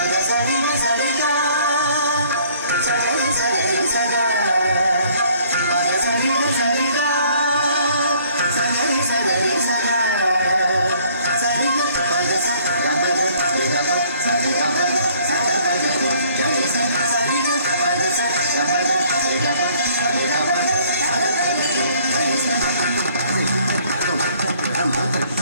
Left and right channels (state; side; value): inverted; both; correlation -0.59